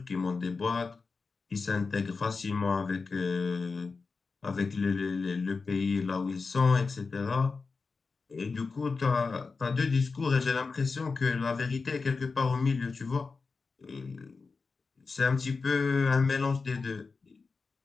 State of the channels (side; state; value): right; quieter; 4.5 dB